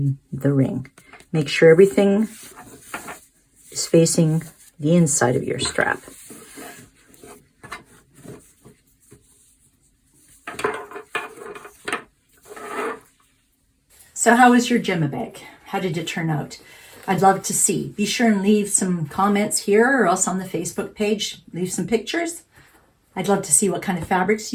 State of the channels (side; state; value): both; identical; correlation 1.00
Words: the ring. Make sure everything is facing the inside of your strap. So how was your Gemma bag? How did it turn out? I'd love to see. Be sure and leave some comments here or else on the Facebook page. Leave some pictures. I'd love to see what kind of fabrics